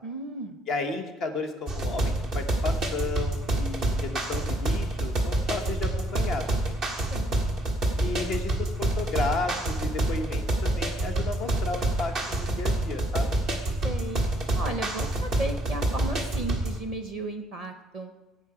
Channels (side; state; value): both; normal; correlation 0.69